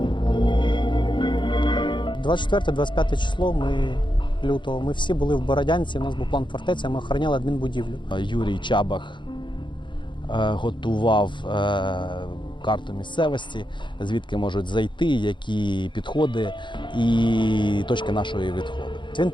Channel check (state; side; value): late; right; 0.23 ms